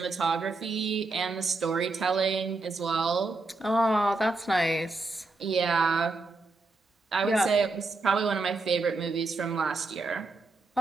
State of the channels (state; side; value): quieter; left; 3.4 dB